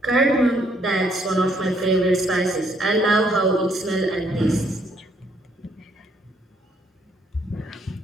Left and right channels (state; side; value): normal; both; correlation 0.69